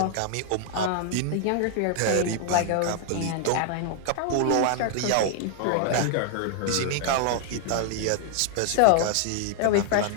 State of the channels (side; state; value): both; different; correlation 0.00